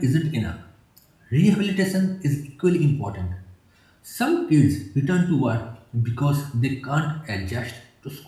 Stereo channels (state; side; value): identical; both; correlation 1.00